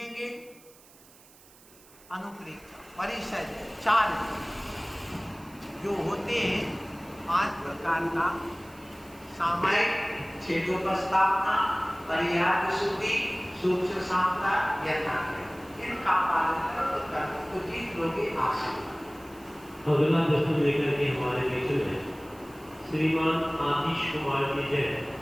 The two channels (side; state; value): right; noise; hiss, 25 dB below the sound